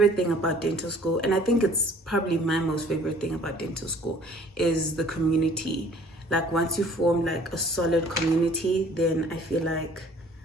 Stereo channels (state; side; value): normal; both; correlation 0.54